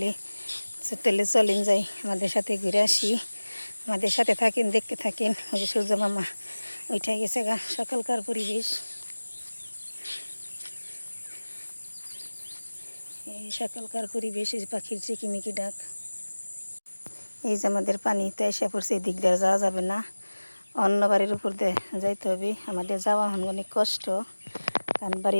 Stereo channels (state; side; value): inverted; both; correlation -1.00